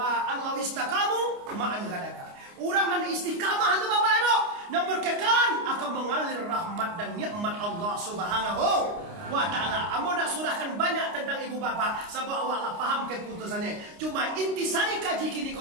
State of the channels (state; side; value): late; left; 29 ms